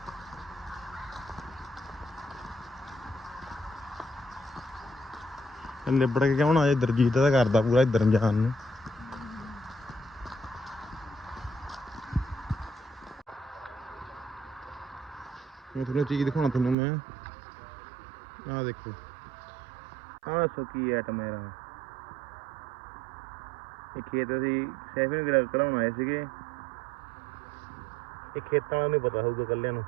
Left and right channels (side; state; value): left; drops out; at 16.8 s